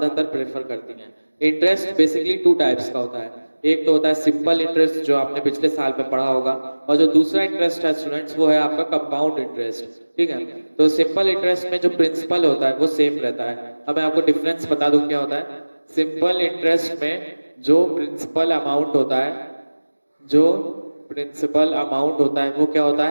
प्रेफर करती हैं. इंटरेस्ट बेसिकली टू टाइप्स का होता है. एक तो होता है सिंपल इंटरेस्ट जो आपने पिछले साल में पढ़ा होगा, और जो दूसरा इंटरेस्ट है स्टूडेंट्स वो है आपका कंपाउंड इंटरेस्ट. ठीक है. तो सिंपल इंटरेस्ट में जो प्रिंसिपल होता है वो सेम रहता है. अब मैं आपको डिफरेंस बता दूं क्या होता है. सिंपल इंटरेस्ट में जो प्रिंसिपल अमाउंट होता है, वो क्या होता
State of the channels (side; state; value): both; inverted; correlation -1.00